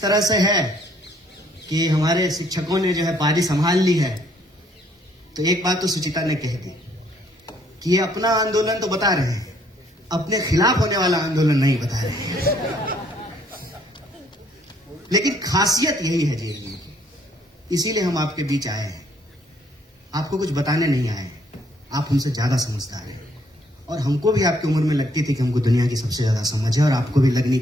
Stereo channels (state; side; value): normal; both; correlation 0.66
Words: तरह से है कि हमारे शिक्षकों ने जो है पारी संभाल ली है। तो एक बात तो सुचिता ने कह दी कि ये अपना आंदोलन तो बता रहे हैं, अपने खिलाफ होने वाला आंदोलन नहीं बता रहे हैं। लेकिन खासियत यही है जेएनयू की, इसीलिए हम आपके बीच आए हैं। आपको कुछ बताने नहीं आए हैं, आप हमसे ज्यादा समझदार हैं। और हमको भी आपकी उम्र में लगती थी कि हमको दुनिया की सबसे ज्यादा समझ है, और आपको भी लगनी